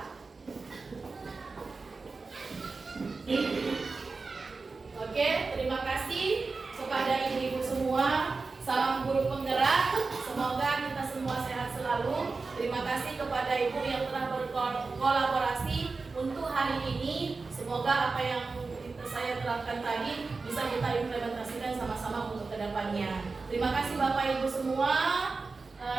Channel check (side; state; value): left; quieter; 4.1 dB